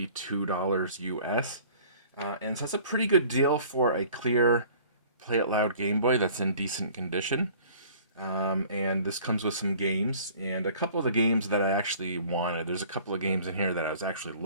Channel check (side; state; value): both; inverted; correlation -0.50